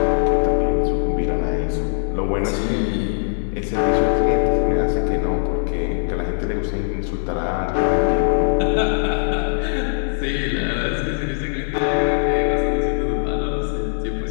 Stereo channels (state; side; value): silent; right; digital silence